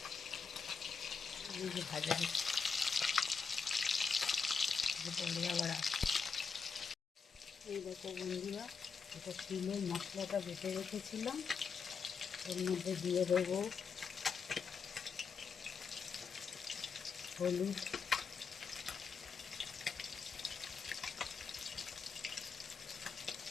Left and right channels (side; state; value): right; quieter; 5.4 dB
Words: এই যে ভাজা হচ্ছে, পরে আবার আসছে। এই দেখো বন্ধুরা, এটা তিলের মশলাটা বেটে রেখেছিলাম, এর মধ্যে দিয়ে দেবো হলুদ,